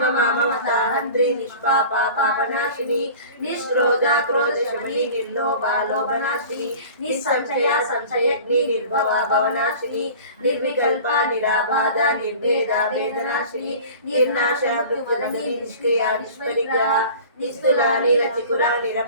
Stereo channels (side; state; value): both; inverted; correlation -0.41